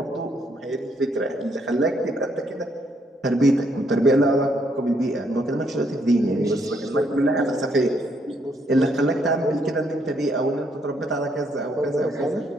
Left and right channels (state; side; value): normal; both; correlation 0.72